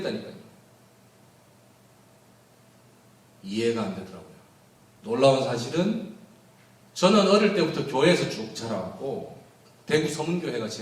이해가 안 되더라고요. 놀라운 사실은 저는 어릴 때부터 교회에서 쭉 자라왔고, 대구 서문교회가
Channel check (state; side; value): identical; both; correlation 1.00